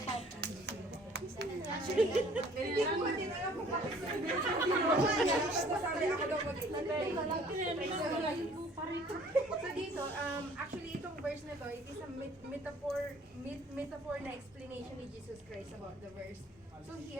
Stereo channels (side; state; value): both; normal; correlation 0.55